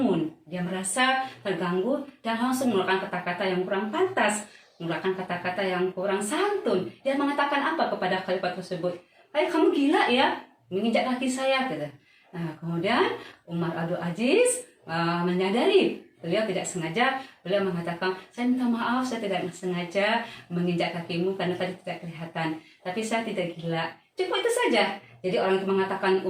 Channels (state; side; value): identical; both; correlation 1.00